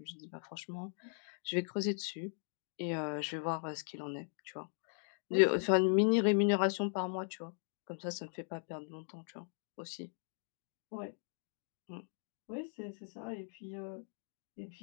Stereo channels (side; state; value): right; silent; 52 dB below the other